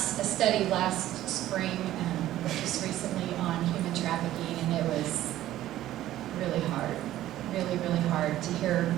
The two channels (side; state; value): left; quieter; 13.9 dB